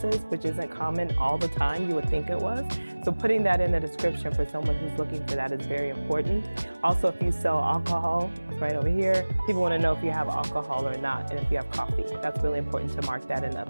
which isn't common all the time. You would think it was. So putting that in the description for someone who's looking for that is very important. Also, if you sell alcohol, it's right over here. People want to know if you have alcohol or not, and if you have coffee. That's really important to mark that and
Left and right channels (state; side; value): inverted; both; correlation -1.00